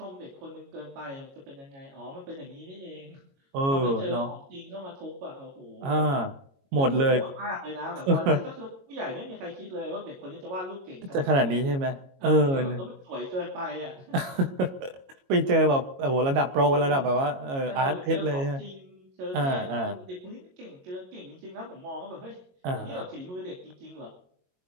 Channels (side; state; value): left; late; 22 ms